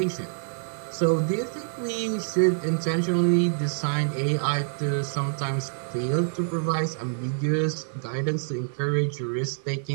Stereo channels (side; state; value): left; silent; digital silence